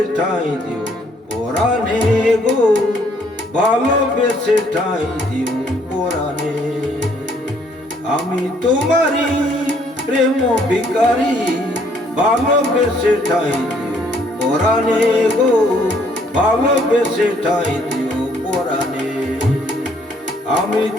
ঠাঁই দিও পরাণে গো, ভালোবেসে ঠাঁই দিও পরাণে। আমি তোমারি প্রেম ভিখারি, ভালোবেসে ঠাঁই দিও পরাণে গো, ভালোবেসে ঠাঁই দিও পরাণে। আমি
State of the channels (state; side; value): normal; both; correlation 0.65